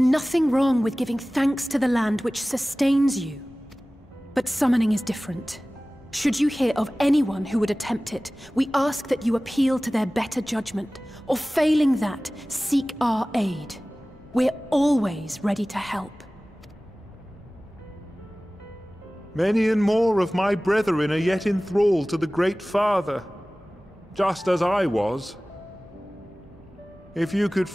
wrong with giving thanks to the land which sustains you. But summoning is different. Should you hear of anyone who would attempt it, we ask that you appeal to their better judgment, or failing that, seek our aid. We're always ready to help. Many and more of my brethren are yet enthralled to the Great Father, just as I was. If you could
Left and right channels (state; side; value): normal; both; correlation 0.98